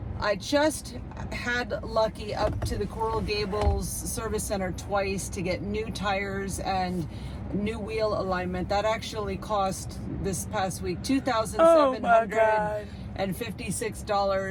I just had Lucky up to the Coral Gables service center twice to get new tires and new wheel alignment. That actually cost this past week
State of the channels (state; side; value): identical; both; correlation 1.00